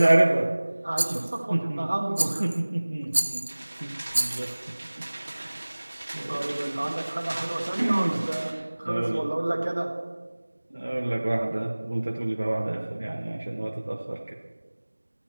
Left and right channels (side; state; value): both; inverted; correlation -1.00